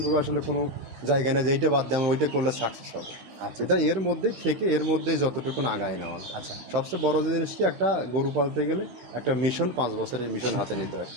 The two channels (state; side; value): late; left; 16 ms